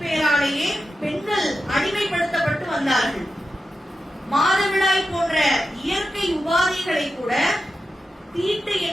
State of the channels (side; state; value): both; normal; correlation 0.90